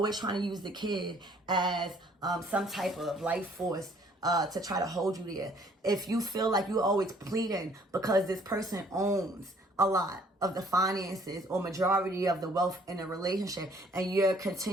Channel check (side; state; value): both; normal; correlation 0.60